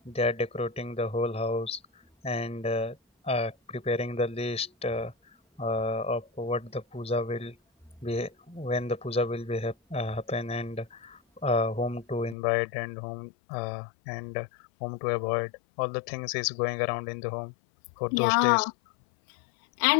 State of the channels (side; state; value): right; drops out; at 12.4 s